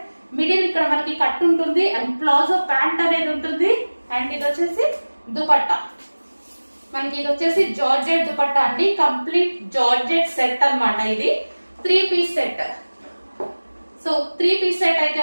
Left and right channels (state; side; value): inverted; both; correlation -1.00